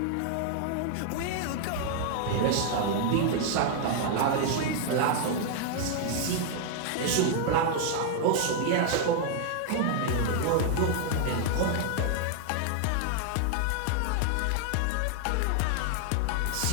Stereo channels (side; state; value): both; different; correlation 0.00